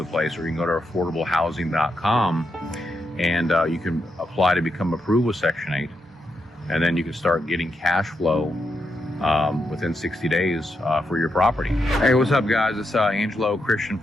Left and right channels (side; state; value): both; normal; correlation 0.83